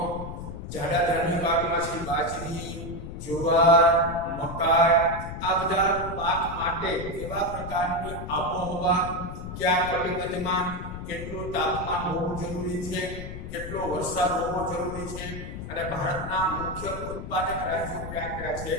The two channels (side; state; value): left; noise; rumble, 8 dB below the sound